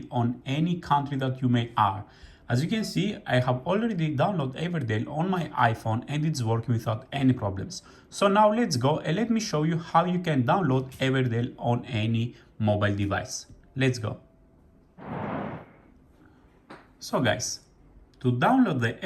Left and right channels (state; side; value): identical; both; correlation 1.00